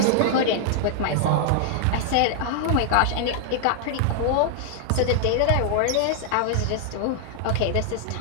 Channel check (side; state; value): both; different; correlation 0.00